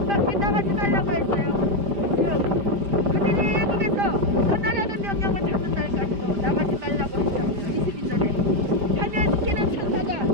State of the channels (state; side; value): late; left; 5.0 ms